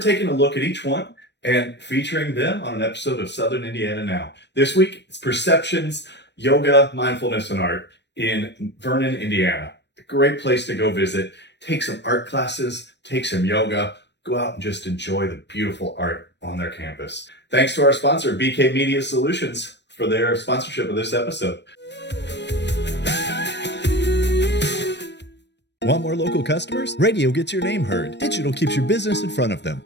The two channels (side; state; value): right; late; 0.50 ms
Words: a look at each one and featuring them on an episode of Southern Indiana Now. This week, it's Perceptions, Yoga, Mindfulness, and Art in Vernon, Indiana. A great place to go visit. Take some art classes, take some yoga, go out and just enjoy the beautiful art on their campus. Thanks to our sponsor, BK Media Solutions, for their sponsorship of this episode. Want more local customers? Radio gets your name heard. Digital keeps your business in front of them.